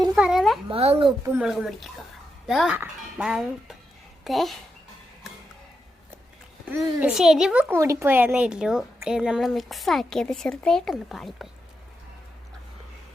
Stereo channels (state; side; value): normal; both; correlation 0.85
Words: പറയണേ, മാങ്ങ ഉപ്പും മുളകും പൊടിക്കുക. ശരിവ് കൂടിപ്പോയെന്നേ ഉള്ളൂ. നമ്മൾ മിക്സ് ആക്കിയത് ചെറുതായിട്ടൊന്ന് പാളിപ്പോയി.